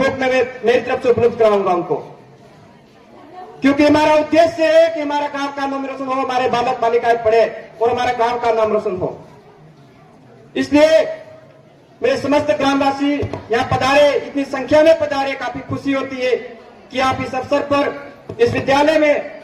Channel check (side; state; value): both; identical; correlation 1.00